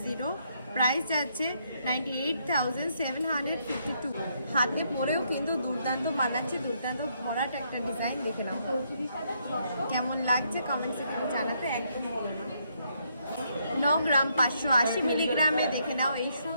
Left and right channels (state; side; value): inverted; both; correlation -0.74